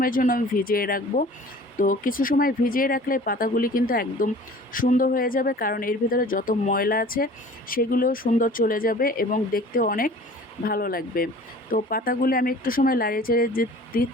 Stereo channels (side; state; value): both; normal; correlation 0.46